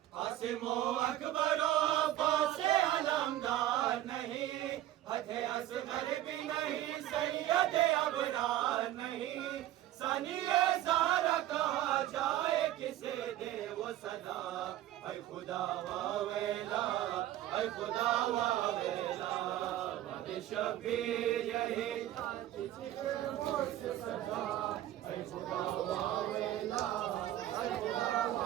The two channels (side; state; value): left; quieter; 13.7 dB